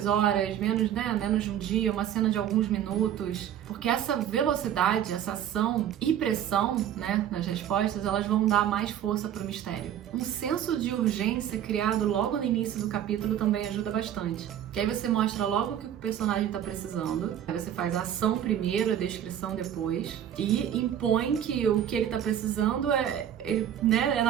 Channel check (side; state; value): left; quieter; 10.2 dB